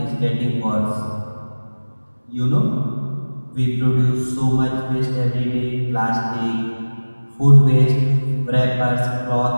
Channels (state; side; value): inverted; both; correlation -1.00